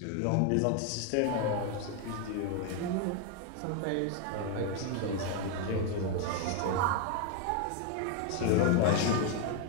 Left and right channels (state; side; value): different; both; correlation 0.01